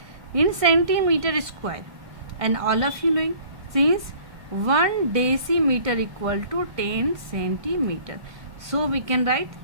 in centimeter square, and all of you knowing since 1 decimeter equal to 10 centimeter, so we can write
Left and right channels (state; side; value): late; left; 1.5 ms